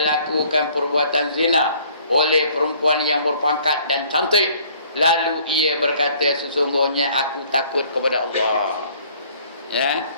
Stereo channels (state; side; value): inverted; both; correlation -0.57